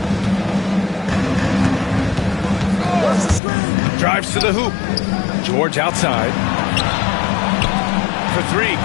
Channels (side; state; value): right; drops out; at 3.4 s